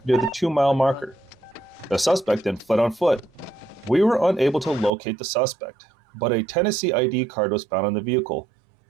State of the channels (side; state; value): left; drops out; at 4.9 s